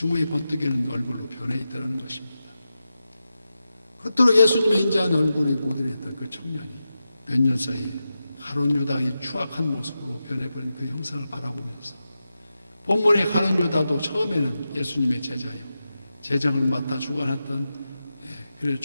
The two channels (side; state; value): both; inverted; correlation -0.91